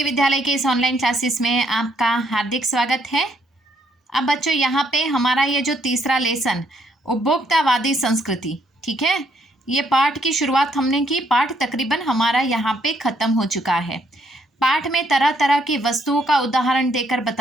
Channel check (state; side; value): normal; both; correlation 0.71